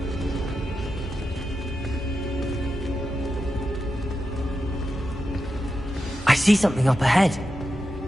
I see something up ahead.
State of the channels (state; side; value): normal; both; correlation 0.89